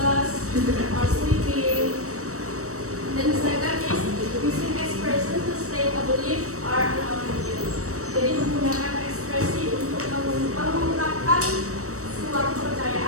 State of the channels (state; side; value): late; left; 0.65 ms